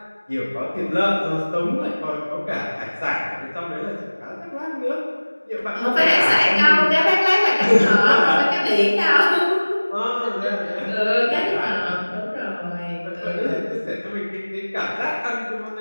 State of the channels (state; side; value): inverted; both; correlation -1.00